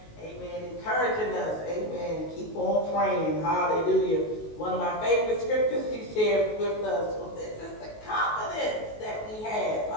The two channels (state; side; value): late; right; 19 ms